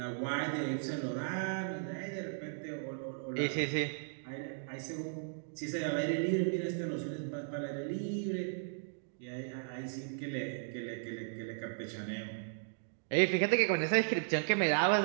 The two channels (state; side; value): silent; left; digital silence